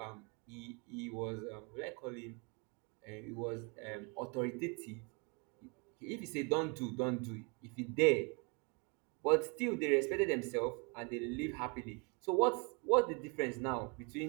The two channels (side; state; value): left; quieter; 32.8 dB